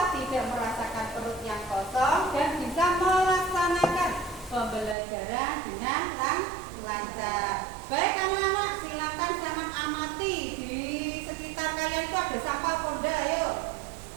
tidak merasakan perut yang kosong dan bisa melaksanakan pembelajaran dengan lancar. Baik anak-anak, silakan jangan amati di sekitar kalian itu ada sampah Ponda, ayo.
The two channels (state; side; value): drops out; left; at 5.0 s